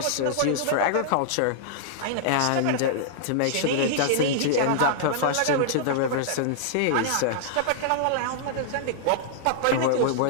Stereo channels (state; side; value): different; both; correlation -0.01